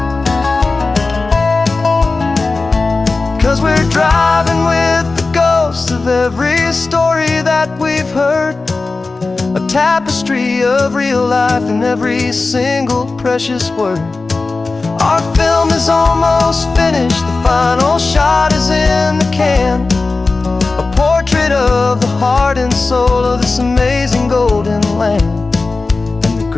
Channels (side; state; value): right; quieter; 3.7 dB